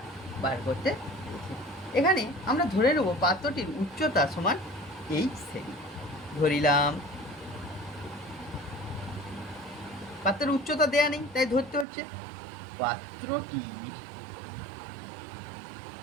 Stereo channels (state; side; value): drops out; left; at 11.9 s